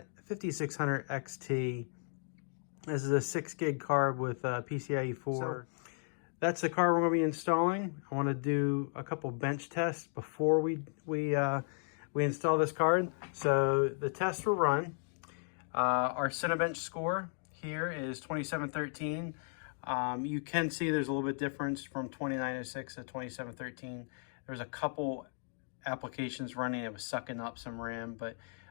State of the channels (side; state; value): right; silent; 54 dB below the other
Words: 5600 XT. This is a 6 gig card with PCIe 4. So that's the card we're going to be installing. I want to do a couple bench tests before we install this card. So the tests were run. Our Cinebench score here is 2713. You can see there's a little bit difference from 2906 to 2713. There's a couple applications running. It was sucking up some RAM, but